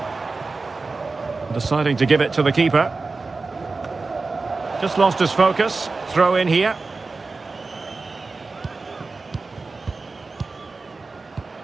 Deciding to give it to the keeper. Just lost his focus. Throw in here.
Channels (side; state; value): left; quieter; 3.9 dB